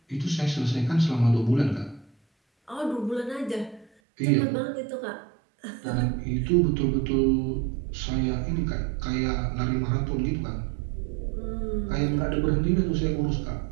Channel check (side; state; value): left; drops out; at 3.9 s